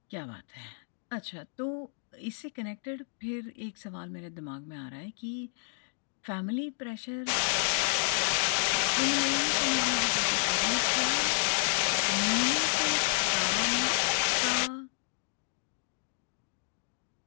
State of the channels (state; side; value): silent; right; digital silence